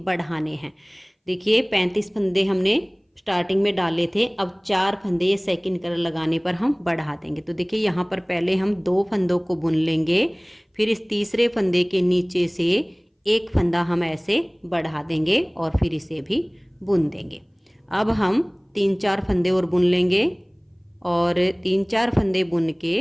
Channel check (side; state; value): both; identical; correlation 1.00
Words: हैं। देखिए, 35 फंदे हमने स्टार्टिंग में डाले थे, अब 4 फंदे ये सेकंड कलर लगाने पर हम बढ़ा देंगे। तो देखिए, यहाँ पर पहले हम 2 फंदों को बुन लेंगे, फिर इस तीसरे फंदे के नीचे से एक फंदा हम ऐसे बढ़ा देंगे और फिर इसे भी बुन देंगे। अब हम 3-4 फंदे और बुन लेंगे और 3-4 फंदे बुन के